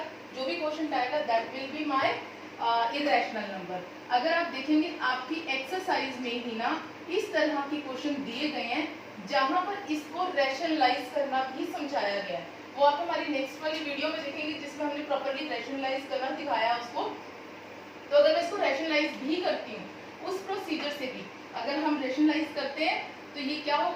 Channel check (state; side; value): identical; both; correlation 1.00